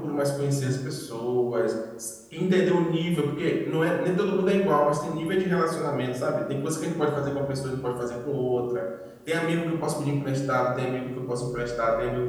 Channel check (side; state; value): both; identical; correlation 1.00